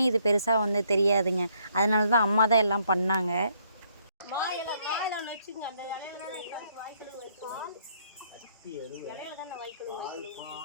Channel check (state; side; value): inverted; both; correlation -0.69